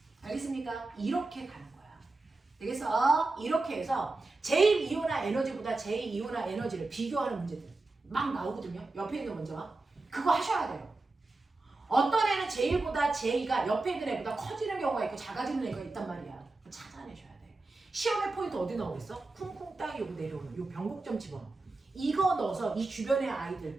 알겠습니까? 이렇게 가는 거야. 되겠어? 이렇게 해서 제1이온화 에너지보다 제2이온화 에너지를 비교하는 문제들 막 나오거든요. 옆에 있는 문제와 그거 하셔야 돼요. 어떤 애는 제1보다 제2가 옆에 있는 애보다 커지는 경우가 있고 작아지는 애가 있단 말이야. 찾아내셔야 돼. 시험의 포인트 어디 나오겠어? 쿵쿵 땅이 요거 내려오는 요 변곡점 집어넣어. 이거 넣어서 이 주변의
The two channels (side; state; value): left; quieter; 3.3 dB